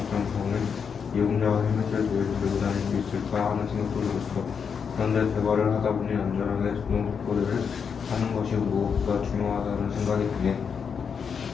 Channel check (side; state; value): right; quieter; 6.5 dB